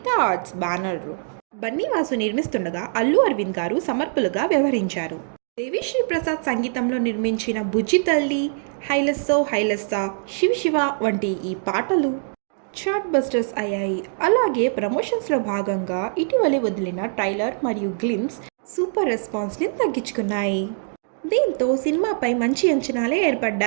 ఆర్ట్స్ బ్యానర్లో బన్నీవాసు నిర్మిస్తుండగా అల్లు అరవింద్ గారు సమర్పులుగా వ్యవహరించారు. దేవిశ్రీ ప్రసాద్ సంగీతంలో నిర్మించిన బుజ్జి తల్లి, హైలెస్సో హైలెస్సా, శివ శివ వంటి ఈ పాటలు చార్ట్ బస్టర్స్ అయ్యాయి. అలాగే ప్రమోషన్స్లో భాగంగా ఇటీవలే వదిలిన ట్రైలర్ మరియు గ్లిమ్స్ సూపర్ రెస్పాన్స్ని తగ్గించుకున్నాయి. దీంతో సినిమాపై మంచి అంచనాలే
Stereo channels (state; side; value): silent; left; digital silence